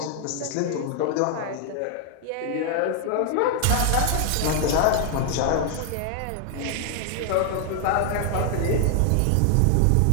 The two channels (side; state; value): both; different; correlation 0.00